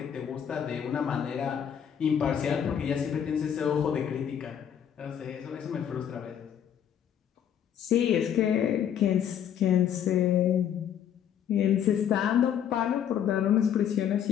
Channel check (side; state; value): right; quieter; 9.1 dB